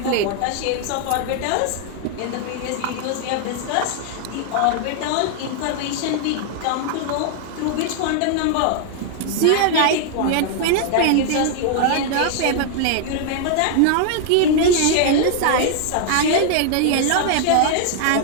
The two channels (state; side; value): different; both; correlation 0.00